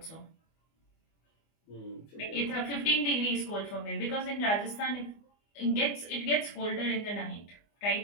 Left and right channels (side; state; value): right; late; 24 ms